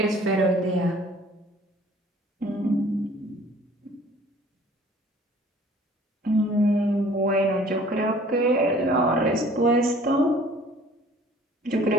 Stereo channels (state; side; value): normal; both; correlation 0.53